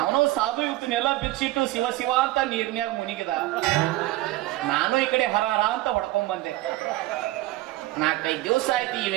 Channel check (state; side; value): quieter; left; 17.7 dB